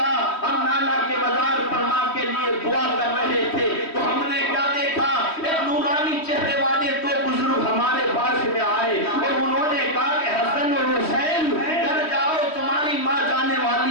ہم نانا کے مزار پر ماں کے لیے دعا کر رہے تھے تو ہم نے کیا دیکھا، ایک نورانی چہرے والے دو بزرگ ہمارے پاس میں آئے اور انہوں نے کہا کہ حسن اور حسین گھر جاؤ، تمہاری ماں جانے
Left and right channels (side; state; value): right; late; 3.1 ms